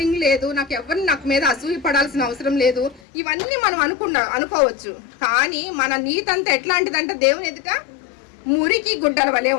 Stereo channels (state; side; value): drops out; right; at 3.0 s